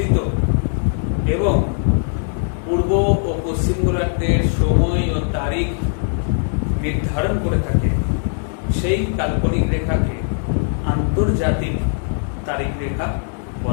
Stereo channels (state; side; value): silent; right; 66 dB below the other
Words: এবং পূর্ব ও পশ্চিম গোলার্ধের সময় ও তারিখ নির্ধারণ করে থাকে, সেই কাল্পনিক রেখাকে আন্তর্জাতিক তারিখ রেখা